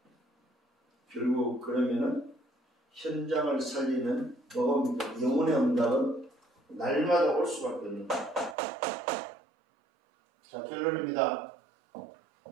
결국 그러면은 현장을 살리는 뭐가 영혼의 응답은 날마다 올 수밖에 없는 거예요. 자, 결론입니다.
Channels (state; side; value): drops out; left; at 8.6 s